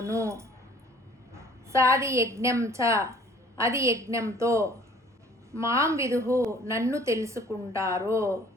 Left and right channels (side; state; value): both; normal; correlation 0.53